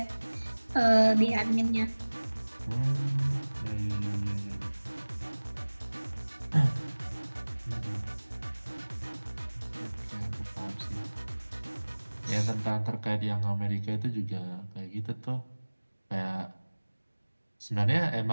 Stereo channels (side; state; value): both; inverted; correlation -1.00